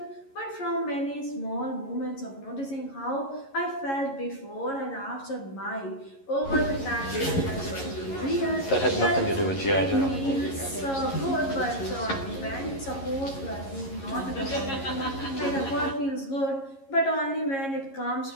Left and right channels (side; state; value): right; late; 11 ms